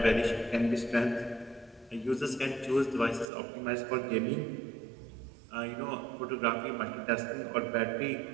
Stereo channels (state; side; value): drops out; left; at 3.2 s